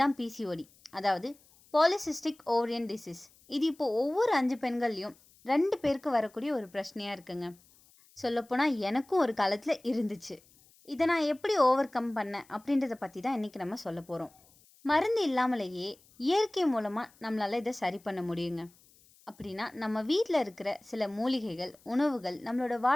பிசிஓடி, அதாவது பாலிசிஸ்டிக் ஓவரியன் டிசீஸ். இது இப்போது ஒவ்வொரு 5 பெண்கள்லையும் 2 பேருக்கு வரக்கூடிய ஒரு பிரச்சனையாக இருக்குங்க. சொல்லப்போனால் எனக்கும் ஒரு காலத்தில் இருந்துச்சு. இதை நான் எப்படி ஓவர் கம் பண்ணேன் அப்படின்றத பற்றி தான் இன்றைக்கி நம்ம சொல்ல போகிறோம். மருந்து இல்லாமலேயே இயற்கை மூலமாக நம்மளால் இதை சரி பண்ண முடியுங்க. அப்படின்னா நம்ம வீட்டில் இருக்கிற சில மூலிகைகள், உணவுகள், நம்மளோட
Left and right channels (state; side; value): noise; left; hiss, 29 dB below the sound